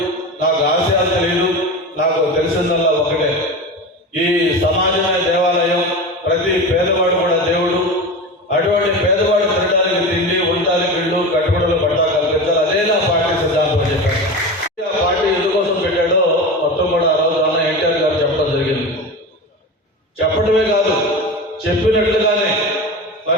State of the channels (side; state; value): both; normal; correlation 0.27